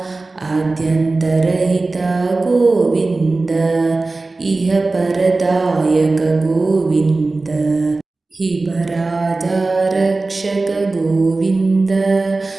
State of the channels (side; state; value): left; quieter; 3.4 dB